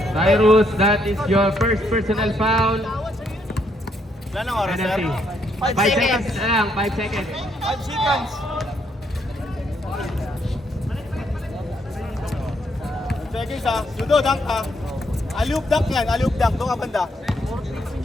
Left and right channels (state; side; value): normal; both; correlation 0.73